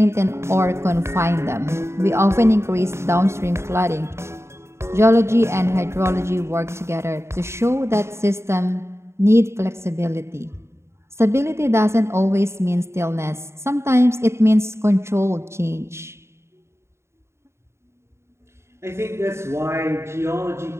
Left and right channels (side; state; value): left; late; 0.13 ms